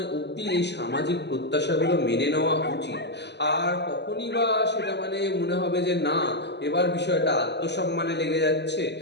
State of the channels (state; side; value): late; right; 0.50 ms